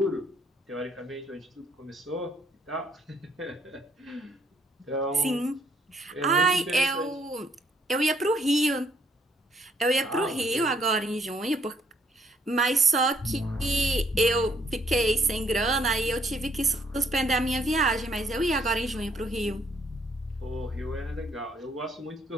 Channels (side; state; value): both; normal; correlation 0.68